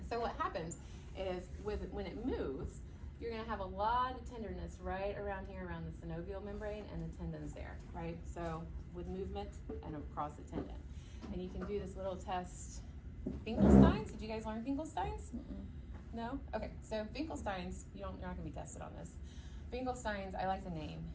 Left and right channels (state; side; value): identical; both; correlation 1.00